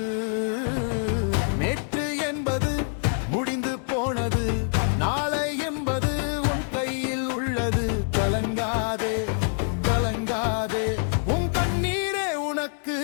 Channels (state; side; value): silent; right; 61 dB below the other